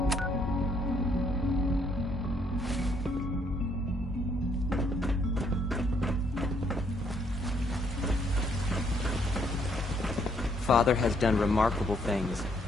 Father has done remarkable things.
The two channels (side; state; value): both; normal; correlation 0.69